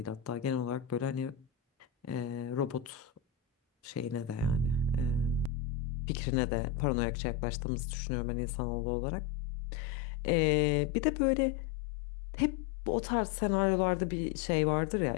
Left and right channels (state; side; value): drops out; right; at 5.5 s